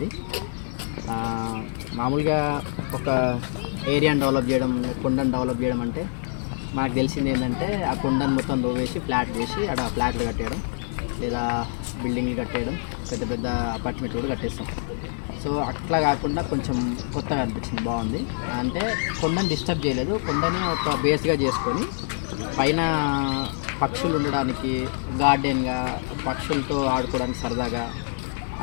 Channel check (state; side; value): silent; right; digital silence